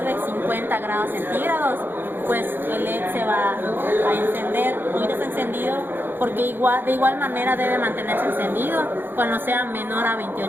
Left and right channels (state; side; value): late; left; 0.098 ms